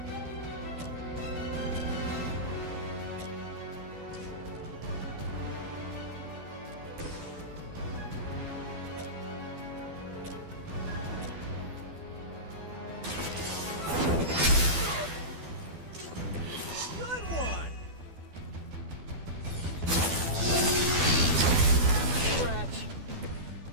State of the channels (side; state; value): left; late; 12 ms